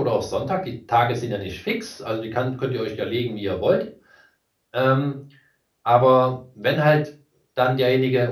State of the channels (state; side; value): identical; both; correlation 1.00